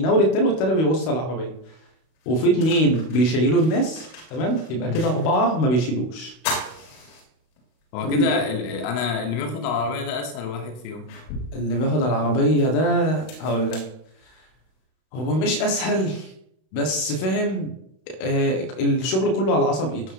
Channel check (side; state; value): right; late; 32 ms